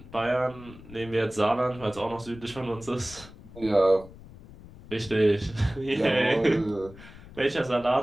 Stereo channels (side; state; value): left; noise; rumble, 19 dB below the sound